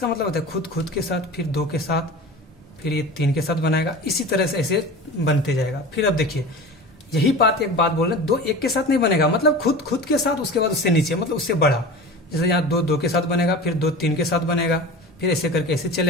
मतलब होता है खुद के साथ, फिर 2 के साथ, फिर ये 3 के साथ बनाएगा, इसी तरह से ऐसे बनते जाएगा। फिर अब देखिए यही बात एक बात बोल रहे हैं, 2 एक के साथ नहीं बनेगा, मतलब खुद के साथ, उसके बाद उससे नीचे, मतलब उससे बड़ा। जैसे यहाँ 2 के साथ बनेगा, फिर 2 3 के साथ बनेगा, फिर ऐसे करके ऐसे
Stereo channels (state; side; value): normal; both; correlation 0.34